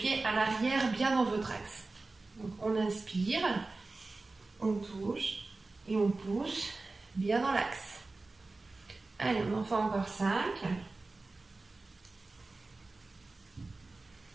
à l'arrière, bien dans votre axe. Donc on inspire, on touche et on pousse bien dans l'axe. Allez, on en fait encore 5.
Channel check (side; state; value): left; quieter; 3.5 dB